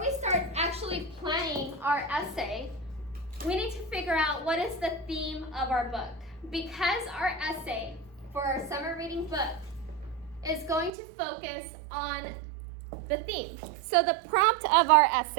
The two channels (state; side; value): drops out; left; at 10.9 s